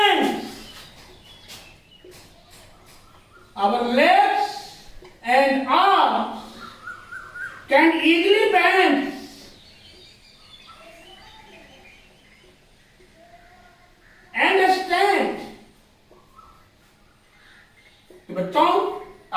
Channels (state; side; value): identical; both; correlation 1.00